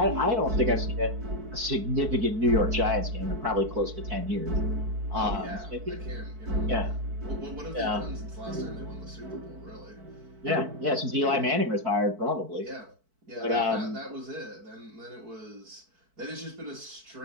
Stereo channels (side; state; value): left; late; 4.5 ms